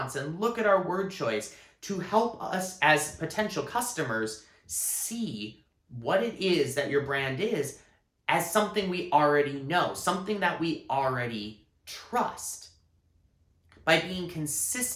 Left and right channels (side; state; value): both; identical; correlation 1.00